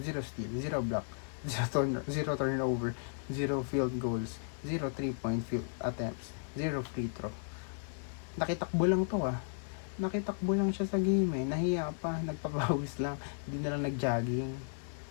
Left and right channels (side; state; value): right; silent; digital silence